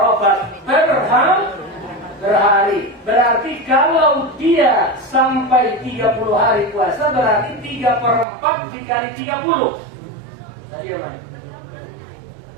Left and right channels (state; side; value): drops out; left; at 8.2 s